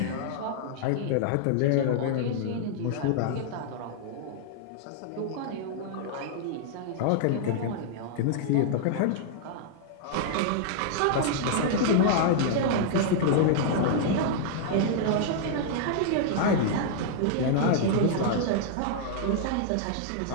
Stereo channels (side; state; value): both; different; correlation -0.01